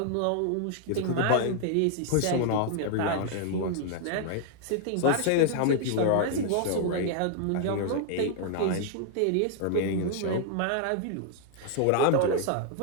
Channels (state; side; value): different; both; correlation 0.00